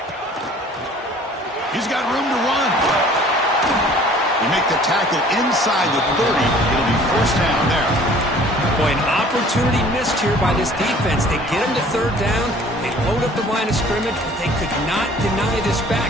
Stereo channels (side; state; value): both; normal; correlation 0.51